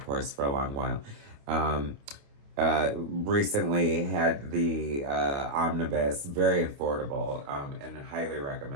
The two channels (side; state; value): left; late; 28 ms